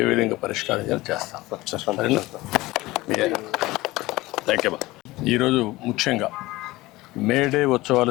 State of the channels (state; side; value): quieter; right; 19.5 dB